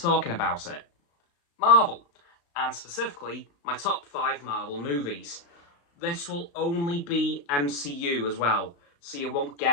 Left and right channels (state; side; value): late; right; 35 ms